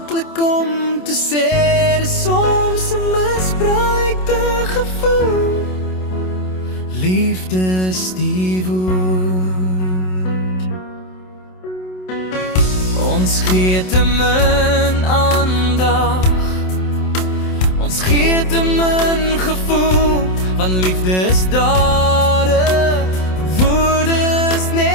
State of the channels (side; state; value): right; late; 27 ms